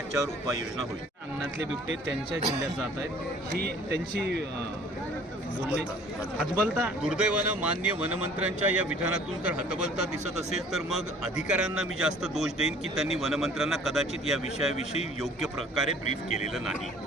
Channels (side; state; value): both; normal; correlation 0.52